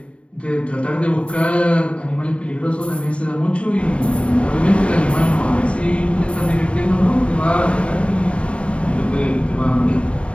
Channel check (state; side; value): late; right; 0.060 ms